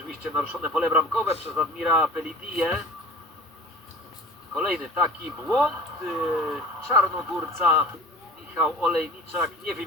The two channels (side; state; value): both; normal; correlation 0.41